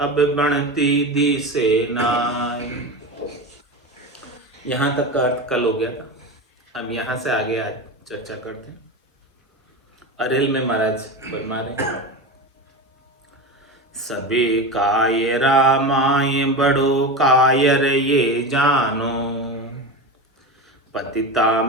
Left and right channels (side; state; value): both; normal; correlation 0.23